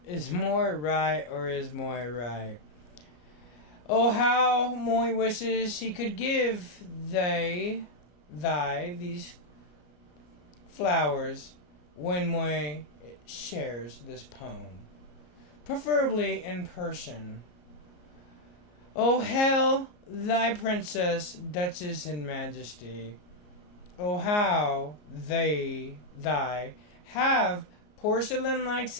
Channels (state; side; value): late; right; 34 ms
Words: is Moy right, or is Moy right? Oh, how Moy wishes he could give thee these flowers when Moy shares this poem, preferably in person. Oh, hail thy princess, duchess, and majesty. Oh, how thy have porcelain-like